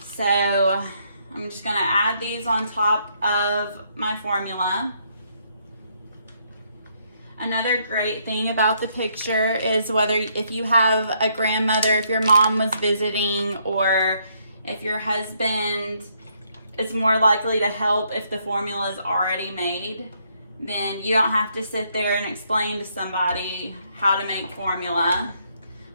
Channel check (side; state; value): both; inverted; correlation -0.72